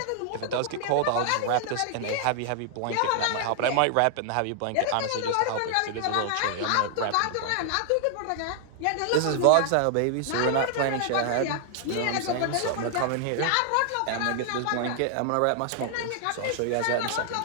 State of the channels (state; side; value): different; both; correlation 0.00